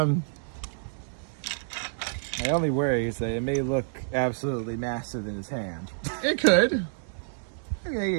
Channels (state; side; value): silent; left; digital silence